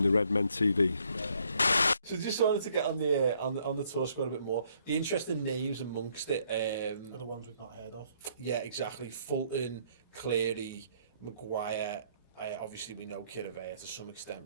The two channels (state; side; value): inverted; both; correlation -0.67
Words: the Redmen TV. So just wanted to get on the tour squad a bit more. The interesting names amongst it are the ones we've not heard of. Yeah, exactly. Fulton, Cleary, Maguire. Obviously, we know Kiravea to some